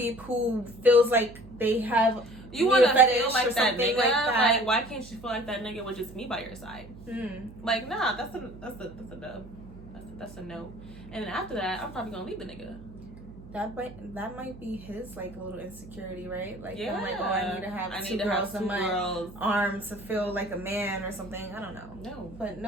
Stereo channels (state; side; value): noise; right; hum, 17 dB below the sound